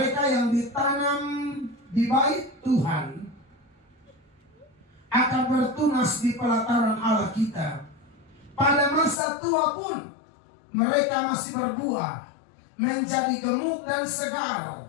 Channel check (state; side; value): drops out; right; at 9.2 s